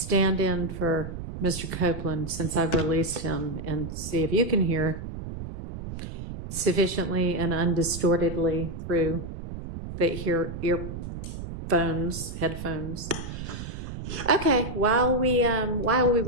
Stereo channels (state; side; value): noise; right; rumble, 8 dB below the sound